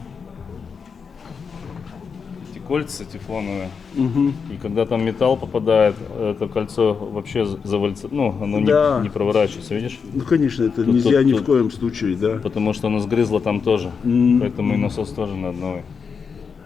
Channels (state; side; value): quieter; right; 5.8 dB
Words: кольца тефлоновые. И когда там металл попадает, это кольцо вообще завалится, оно Да. не проворачивается, видишь? Ну, конечно, это нельзя ни в коем случае, да. Потому что оно сгрызло там тоже. Поэтому и насос тоже надо новый.